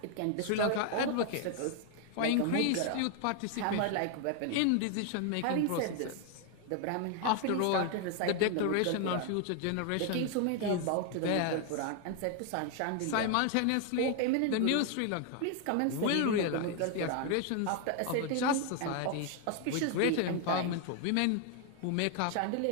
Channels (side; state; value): both; different; correlation 0.00